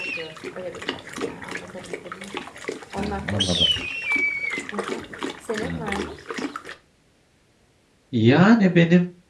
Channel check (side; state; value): both; identical; correlation 1.00